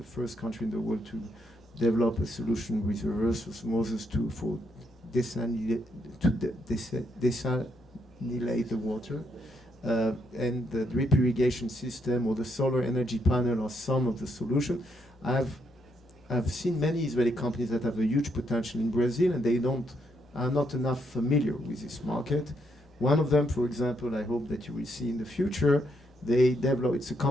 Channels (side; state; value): both; normal; correlation 0.76